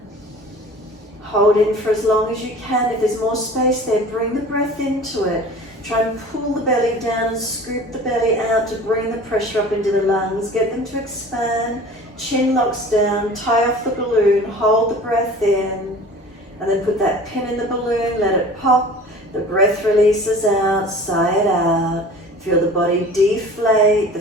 Hold in for as long as you can. If there's more space there, bring the breath into it. Try and pull the belly down and scoop the belly out to bring the pressure up into the lungs. Get them to expand. Chin locks down. Tie off the balloon. Hold the breath in. And then put that pin in the balloon. Let it pop. The breath releases out. Sigh it out. Feel the body deflate. The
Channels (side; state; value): both; normal; correlation 0.42